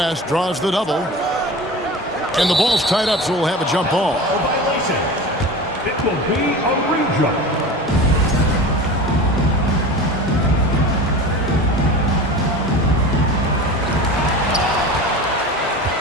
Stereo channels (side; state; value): both; normal; correlation 0.33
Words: draws the double. And the ball's tied up, so we'll have a jump ball. It will be a re-jump.